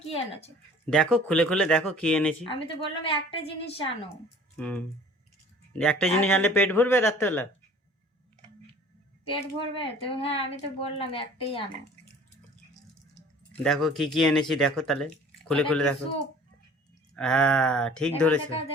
কি এনেছো? দেখো খুলে খুলে দেখো কি এনেছি। আমি তো বললাম একটা জিনিস আনো। হুম, একটা জিনিস এত আনলে পেট ভরবে রাত্রেবেলা? পেট ভরবে তো? হ্যাঁ, আমি তো বললাম একটাই আনো। দেখো কি কি এনেছি, দেখো তাহলে খুলে এটা খুলে কি দেখো। স্যুপ? হ্যাঁ ঠিক দেখাও ধরেছো, দেখাও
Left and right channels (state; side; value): normal; both; correlation 0.48